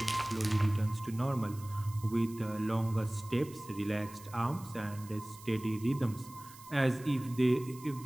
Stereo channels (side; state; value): right; noise; hiss, 20 dB below the sound